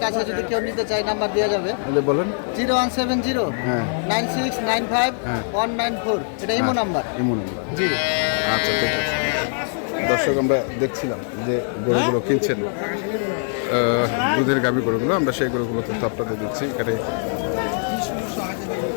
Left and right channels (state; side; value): silent; right; 64 dB below the other